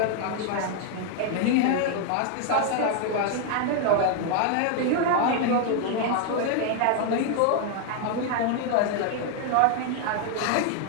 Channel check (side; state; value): both; different; correlation 0.00